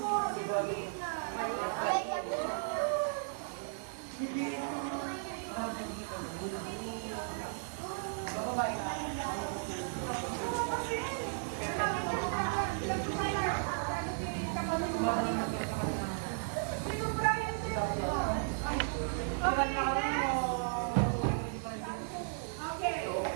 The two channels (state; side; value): silent; left; digital silence